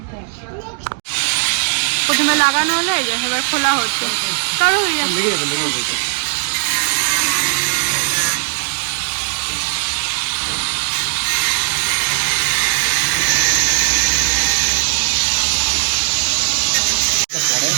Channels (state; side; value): silent; left; 62 dB below the other